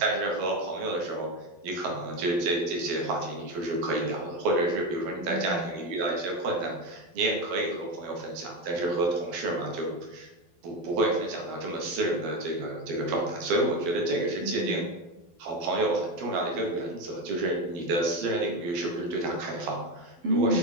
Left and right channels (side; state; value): left; late; 12 ms